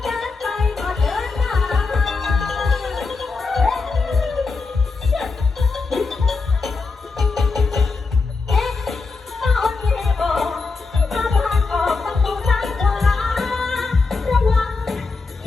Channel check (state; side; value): quieter; right; 4.2 dB